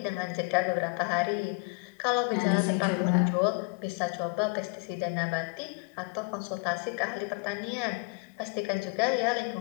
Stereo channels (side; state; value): right; quieter; 30.8 dB